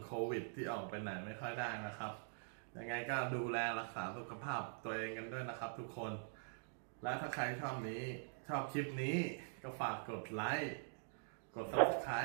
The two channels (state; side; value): silent; left; digital silence